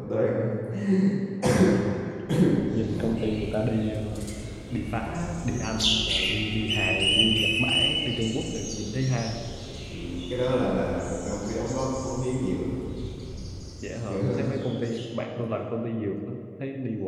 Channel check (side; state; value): both; identical; correlation 1.00